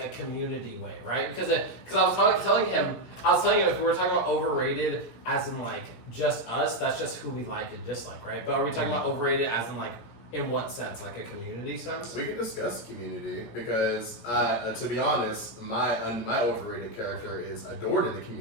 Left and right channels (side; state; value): right; late; 17 ms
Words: a community way, right? Because I was telling him if we were talking about overrated as in like just us, that's just who we like and dislike, right? But are we talking about overrated as in like in what sense, like a community sense? We can discuss community because, to be honest, my overrated character is adored in the